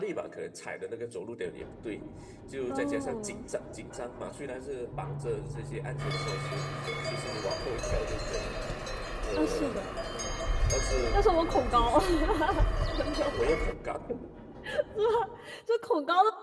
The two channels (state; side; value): identical; both; correlation 1.00